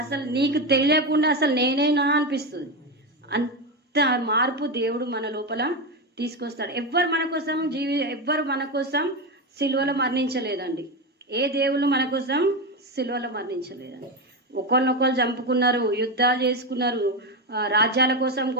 అసలు నీకు తెలియకుండా అసలు నేనేనా అనిపిస్తుంది. అంత మార్పు దేవుడు మన లోపల తీసుకొస్తాడు. ఎవ్వరు మన కోసం సిలువలో మరణించలేదండి. ఏ దేవుళ్ళు మన కోసం సిలువలో మరణించలేదండి. ఒకరినొకరు చంపుకున్నారు, యుద్ధాలు చేసుకున్నారు, రాజ్యాల కోసం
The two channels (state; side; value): normal; both; correlation 0.14